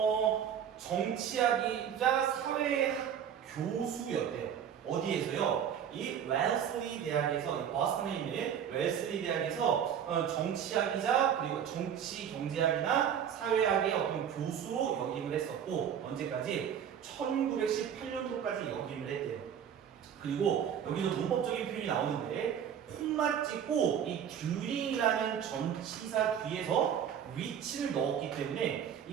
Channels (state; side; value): quieter; left; 8.7 dB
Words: 정치학이자 사회학 교수였대요. 어디에서요? 이 웰슬리 대학에서, 이 버스턴에 있는 웰슬리 대학에서 정치학이자 그리고 정치 경제학이나 사회학의 어떤 교수로 역임을 했었고, 언제까지? 1918년도까지 역임을 했대요. 그리고 여기서 문법적인 표현이 나오는데, 콤마 찍고 이 듀링이라는 전치사 뒤에서 위치를 넣었기 때문에 이